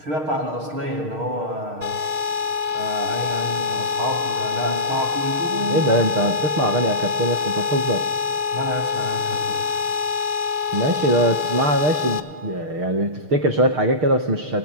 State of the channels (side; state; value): left; late; 6.5 ms